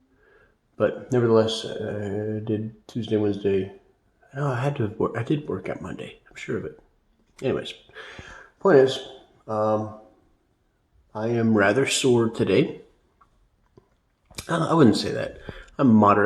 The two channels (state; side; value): identical; both; correlation 1.00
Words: But nevertheless, I did Tuesday, Wednesday. No, I did work out Monday. I'm sure of it. Anyways, point is, um, I am rather sore today. I wouldn't say that. I'm